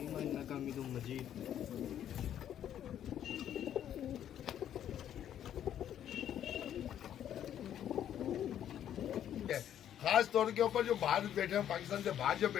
इन्नका हमीदुम मजीद। खास तौर के ऊपर जो बाहर बैठे हैं, पाकिस्तान से बाहर जो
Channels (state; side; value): quieter; right; 10.4 dB